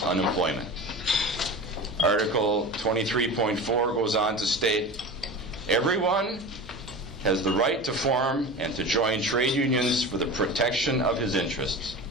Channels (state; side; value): noise; left; hum, 21 dB below the sound